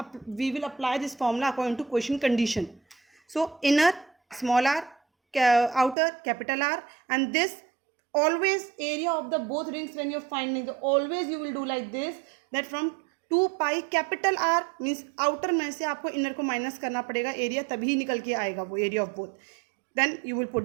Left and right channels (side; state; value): left; drops out; at 6.0 s